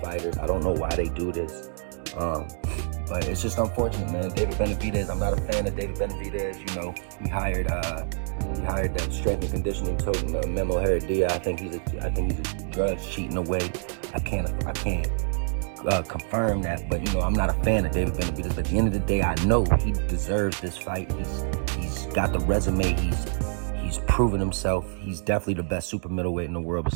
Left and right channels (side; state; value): left; silent; digital silence